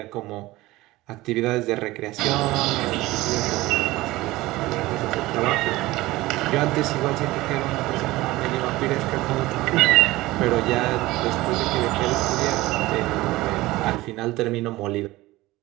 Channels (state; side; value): quieter; left; 18.7 dB